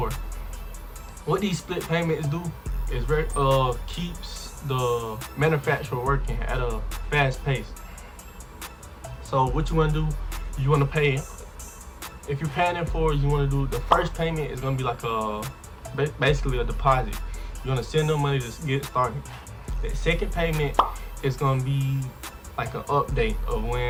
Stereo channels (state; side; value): identical; both; correlation 1.00